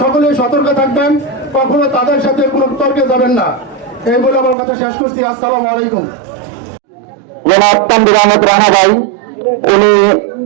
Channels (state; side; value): drops out; left; at 4.5 s